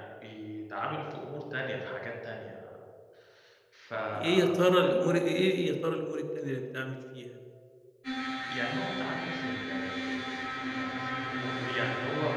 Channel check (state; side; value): identical; both; correlation 1.00